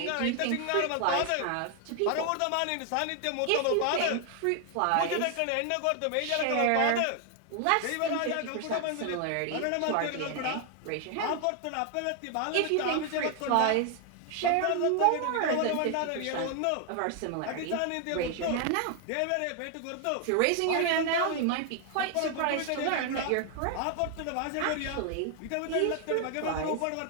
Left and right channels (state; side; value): different; both; correlation 0.00